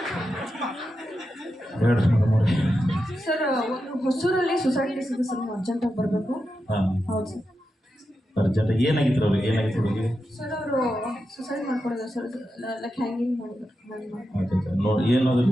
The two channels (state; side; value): normal; both; correlation 0.88